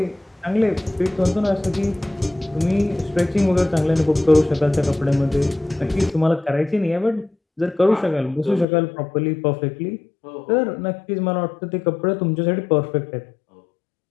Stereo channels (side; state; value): right; drops out; at 8.7 s